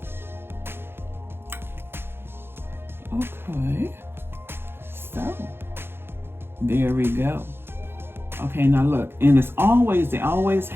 Okay, so there we go. Okay, now look, and it's always, they always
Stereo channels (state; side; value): late; left; 0.11 ms